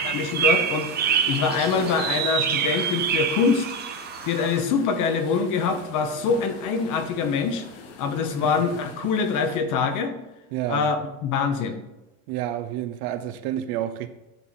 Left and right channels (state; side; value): normal; both; correlation 0.15